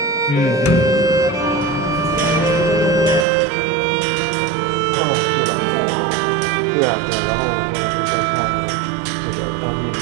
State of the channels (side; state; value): left; drops out; at 3.2 s